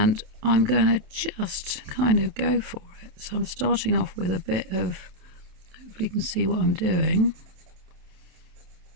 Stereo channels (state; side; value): late; left; 28 ms